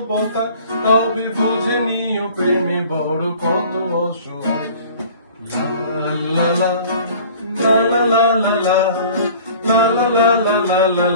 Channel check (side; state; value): both; inverted; correlation -0.47